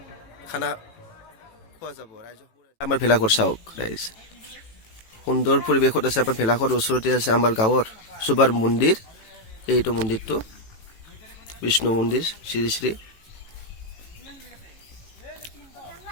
খানা খোৱা যাব। ৰাইজক আমাৰ ভেলাঘৰ চাওক ৰাইজ, সুন্দৰ পৰিৱেশত আছে। আমাৰ ভেলাঘৰ ওচৰতে আছে আমাৰ গাঁৱৰ চুবাৰ মন্দিৰ। এইটো মন্দিৰটো বিষ্ণু মন্দিৰ শ্ৰী শ্ৰী।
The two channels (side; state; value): right; late; 18 ms